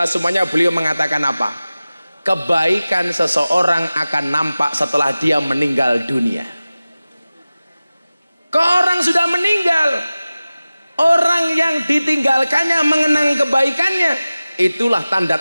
semuanya, beliau mengatakan apa? Kebaikan seseorang akan nampak setelah dia meninggal dunia. Kalau orang sudah meninggal, orang yang ditinggalkannya mengenang kebaikannya, itulah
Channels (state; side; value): inverted; both; correlation -0.97